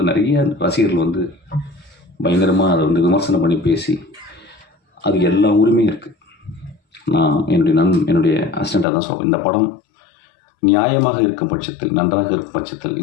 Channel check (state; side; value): drops out; right; at 8.8 s